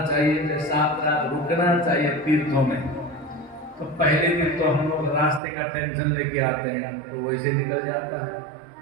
चाहिए, 7 रात रुकना चाहिए तीर्थों में। तो पहले दिन तो हम लोग रास्ते का टेंशन लेके आते हैं तो वैसे निकल जाता है,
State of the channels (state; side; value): drops out; left; at 5.4 s